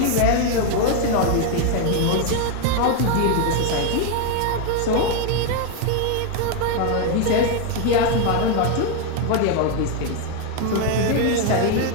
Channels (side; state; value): both; different; correlation 0.01